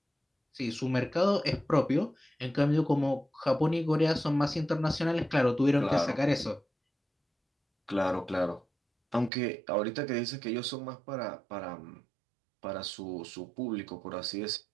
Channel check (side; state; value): left; drops out; at 9.3 s